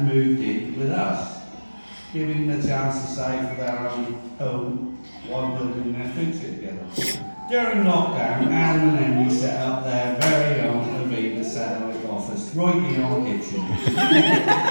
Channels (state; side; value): inverted; both; correlation -1.00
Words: moved in with us, giving them a chance to save for their own home while building their future together. During lockdown, Adam and Emily set up their very own Aviva satellite office right in our kitchen.